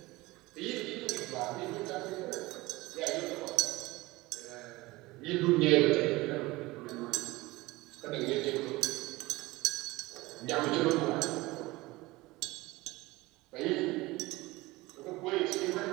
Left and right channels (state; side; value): quieter; left; 20.7 dB